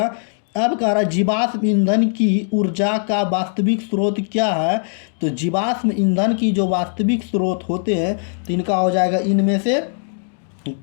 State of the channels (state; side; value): silent; right; digital silence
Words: अब कह रहा है जीवाश्म ईंधन की ऊर्जा का वास्तविक स्रोत क्या है। तो जीवाश्म ईंधन की जो वास्तविक स्रोत होते हैं तो इनका हो जाएगा इनमें से